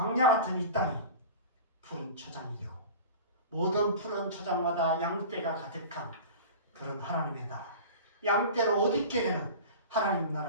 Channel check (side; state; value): both; inverted; correlation -0.35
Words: 같은 이 땅이 푸른 초장이 되고 모든 푸른 초장마다 양떼가 가득한 그런 하나님의 나라, 양떼로 옷 입게 되는 하나님